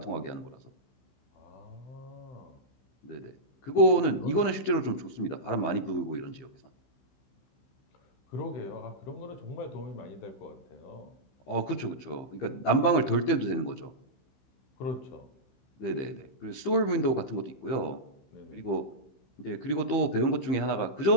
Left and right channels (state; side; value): late; right; 15 ms